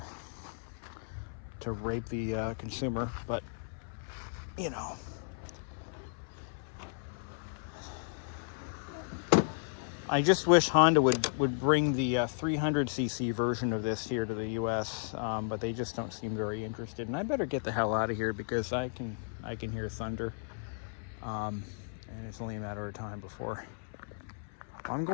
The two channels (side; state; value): right; silent; 55 dB below the other